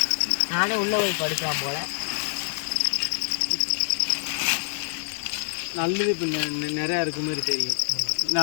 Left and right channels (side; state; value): right; silent; 61 dB below the other